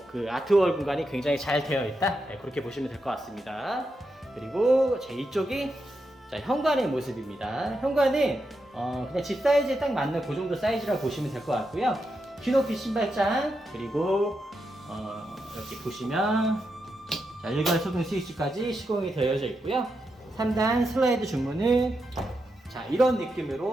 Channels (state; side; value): normal; both; correlation 0.85